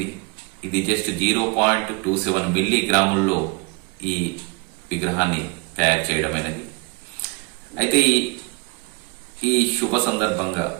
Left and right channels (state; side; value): quieter; left; 30.1 dB